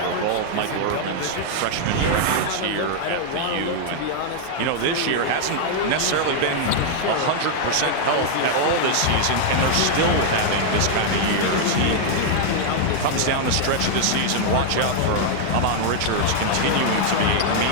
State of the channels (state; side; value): different; both; correlation 0.00